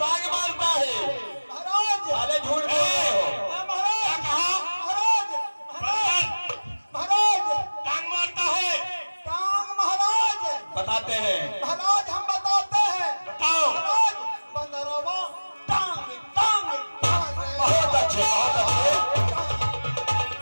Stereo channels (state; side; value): inverted; both; correlation -1.00